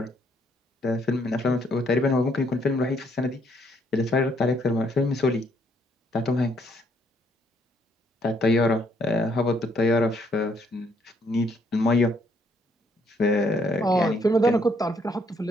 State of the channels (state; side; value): normal; both; correlation 0.69